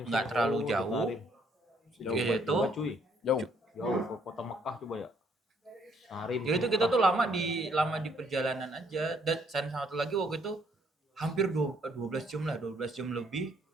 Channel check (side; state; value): both; normal; correlation 0.67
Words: nggak terlalu jauh. Jauh Gitu. banget, cuy. Jauh. Jauh ke kota Mekah coba ya. Tarim. Jadi itu kita tuh lama di perjalanan aja. Dan satu lagi waktu itu hampir 12 jam lah, 12 jam lebih